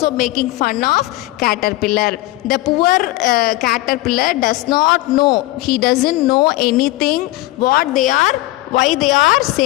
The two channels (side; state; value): right; quieter; 18.4 dB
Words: making fun of caterpillar. The poor caterpillar does not know. He doesn't know anything why they are